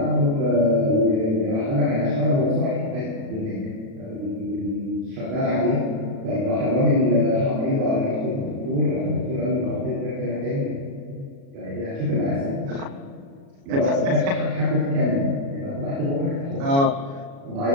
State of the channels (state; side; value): late; left; 36 ms